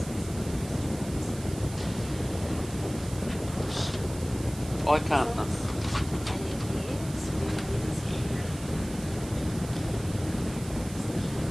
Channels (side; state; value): right; noise; hiss, 15 dB below the sound